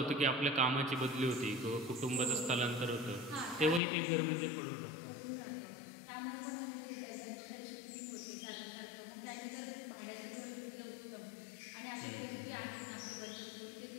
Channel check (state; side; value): drops out; right; at 3.8 s